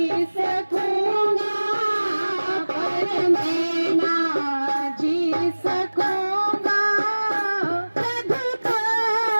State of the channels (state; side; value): inverted; both; correlation -1.00